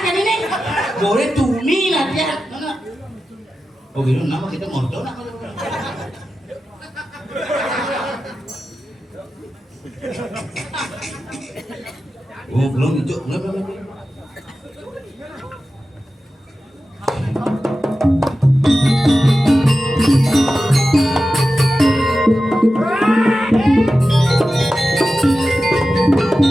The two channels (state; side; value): normal; both; correlation 0.93